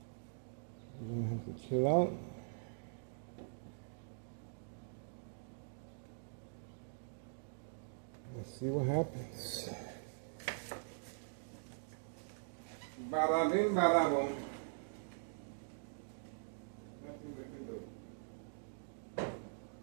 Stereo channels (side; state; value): left; silent; digital silence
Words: We're gonna have to chill out. Let's see what happens. Bada bing, bada boom. Nothing we can do.